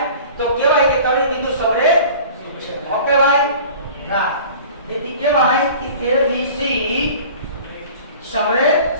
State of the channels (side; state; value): both; inverted; correlation -0.43